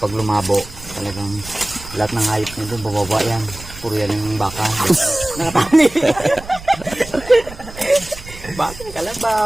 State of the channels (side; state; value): right; noise; rumble, 16 dB below the sound